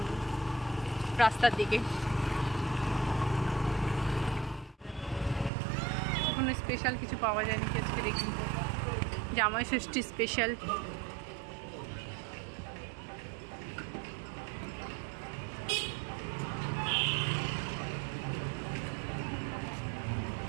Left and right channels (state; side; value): drops out; left; at 5.5 s